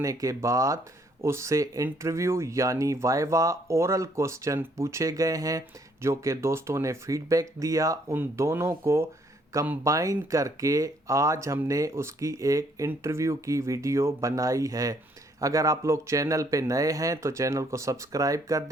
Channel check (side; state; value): both; normal; correlation 0.67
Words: के बाद उससे इंटरव्यू यानी वाइवा ओरल क्वेश्चन पूछे गए हैं, जो कि दोस्तों ने फीडबैक दिया। उन दोनों को कंबाइन करके आज हमने उसकी एक इंटरव्यू की वीडियो बनाई है। अगर आप लोग चैनल पे नए हैं तो चैनल को सब्सक्राइब कर